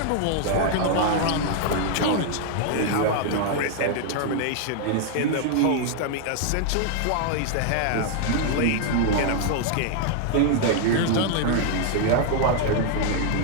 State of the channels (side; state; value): both; different; correlation 0.00